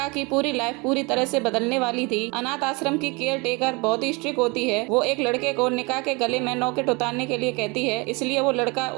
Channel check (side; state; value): left; quieter; 27.4 dB